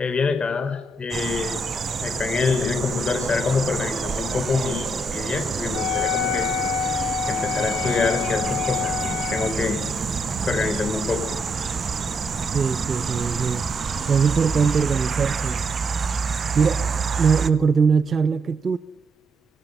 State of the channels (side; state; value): both; normal; correlation 0.77